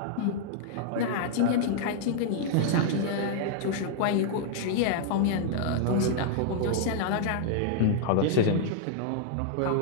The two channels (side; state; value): both; different; correlation -0.01